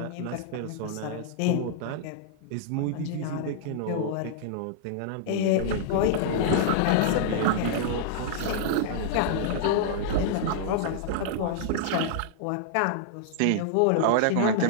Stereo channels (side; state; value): both; different; correlation -0.01